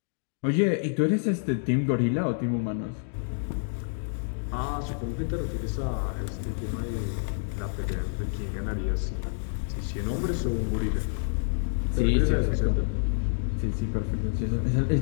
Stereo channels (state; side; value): silent; right; digital silence